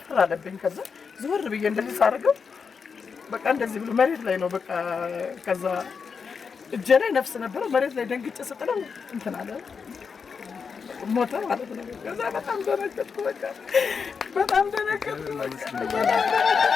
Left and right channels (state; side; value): quieter; right; 5.8 dB